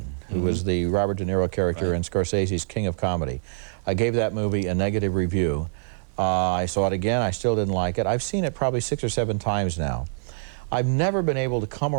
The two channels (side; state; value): left; silent; digital silence